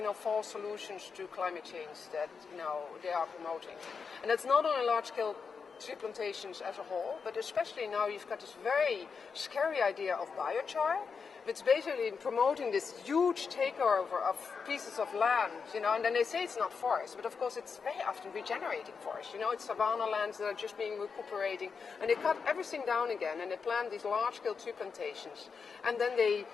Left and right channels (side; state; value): right; quieter; 5.6 dB